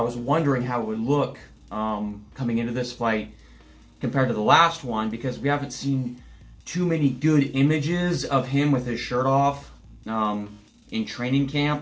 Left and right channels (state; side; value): identical; both; correlation 1.00